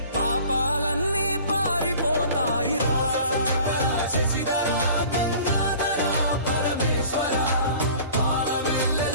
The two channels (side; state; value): both; inverted; correlation -0.46